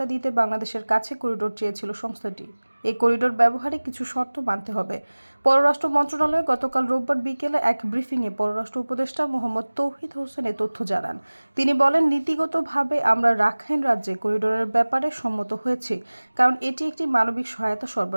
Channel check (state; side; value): inverted; both; correlation -1.00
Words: দিতে বাংলাদেশের কাছে করিডোর চেয়েছিল সংস্থাটি। এই করিডোর ব্যবহারে কিছু শর্ত মানতে হবে। পররাষ্ট্র মন্ত্রণালয় গতকাল রোববার বিকেলে এক ব্রিফিংয়ে পররাষ্ট্র উপদেষ্টা মোহাম্মদ তৌহিদ হোসেন এ তথ্য জানান। তিনি বলেন, নীতিগতভাবে আমরা রাখাইন রাজ্যে করিডোরের ব্যাপারে সম্মত হয়েছি, কারণ এটি একটি মানবিক সহায়তা